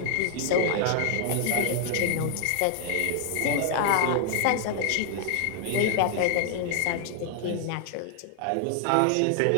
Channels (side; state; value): both; different; correlation 0.00